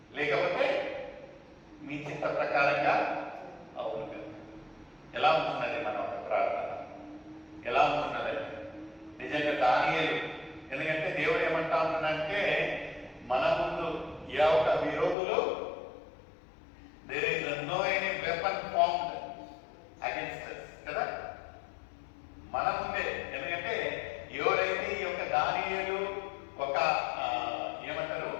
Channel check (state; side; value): drops out; right; at 15.2 s